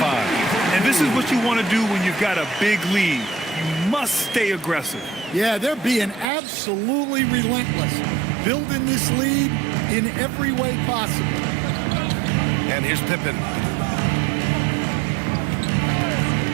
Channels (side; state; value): left; drops out; at 6.2 s